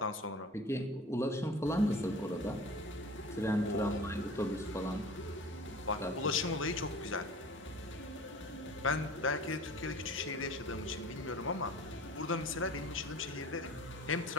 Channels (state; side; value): normal; both; correlation 0.41